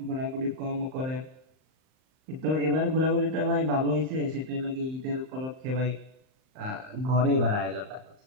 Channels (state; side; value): late; left; 38 ms